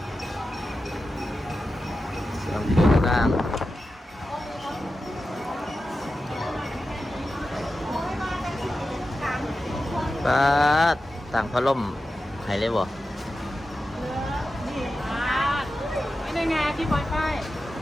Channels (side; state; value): both; normal; correlation 0.92